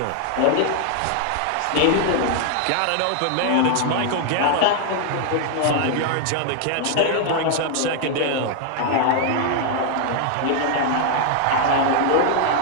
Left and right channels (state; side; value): different; both; correlation 0.00